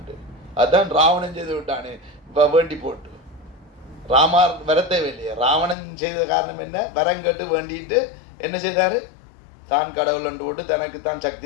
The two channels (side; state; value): right; drops out; at 5.8 s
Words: அதுதான் ராவணன் செய்து விட்டானே இப்போ வேண்டி போட்டு ராமார் வரத்தேவை இல்லையா. ராவணன் செய்த காரணம் என்ன, வரம் கேட்டு வேண்டிட்டு என்ன செய்தார், தான் கடவுள் அண்டு போட்டு தனக்கு தான்